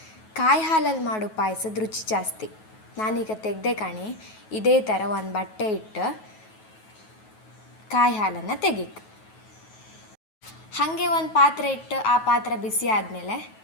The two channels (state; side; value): late; right; 9.3 ms